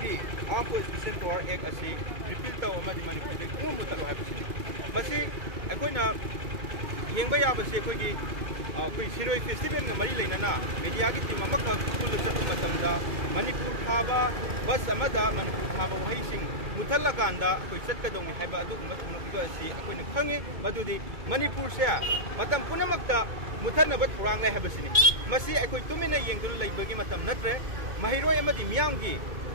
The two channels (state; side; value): late; left; 2.2 ms